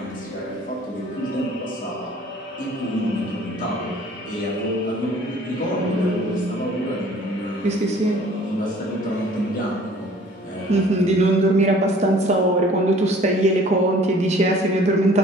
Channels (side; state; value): both; normal; correlation 0.52